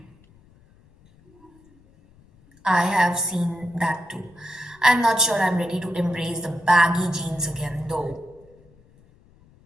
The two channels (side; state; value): left; noise; rumble, 29 dB below the sound